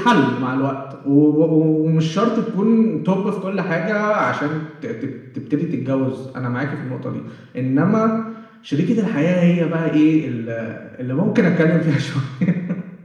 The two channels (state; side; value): identical; both; correlation 1.00